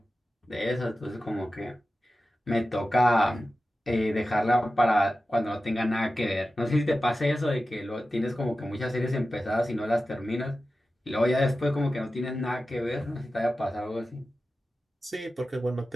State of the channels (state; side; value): normal; both; correlation 0.94